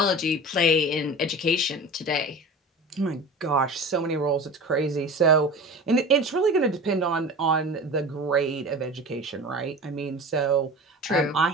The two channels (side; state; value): both; normal; correlation 0.35